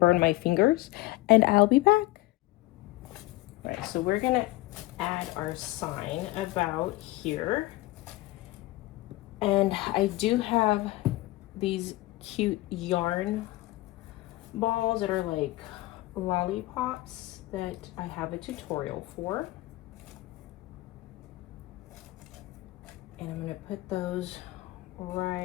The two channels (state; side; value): quieter; right; 18.9 dB